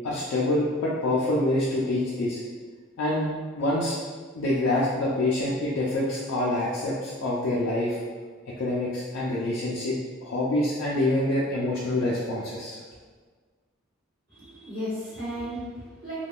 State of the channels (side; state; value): both; normal; correlation 0.44